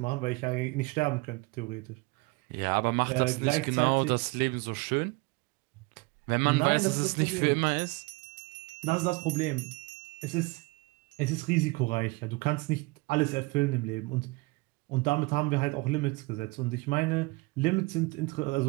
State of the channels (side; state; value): left; quieter; 25.5 dB